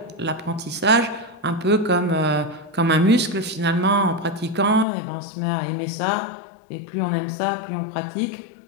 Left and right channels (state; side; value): drops out; right; at 4.9 s